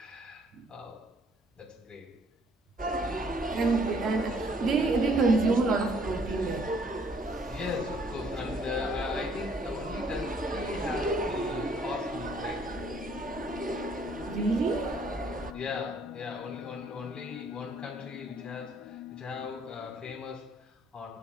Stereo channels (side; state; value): both; normal; correlation 0.63